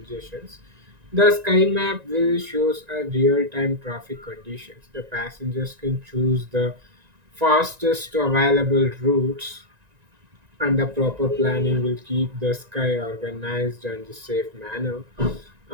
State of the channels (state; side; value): late; left; 1.9 ms